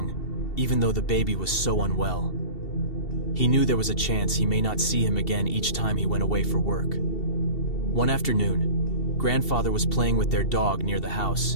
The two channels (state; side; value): late; right; 2.7 ms